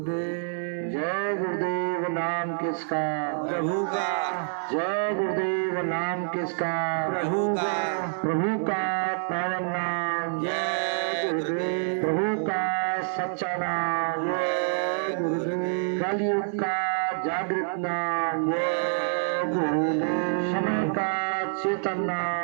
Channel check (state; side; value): silent; left; digital silence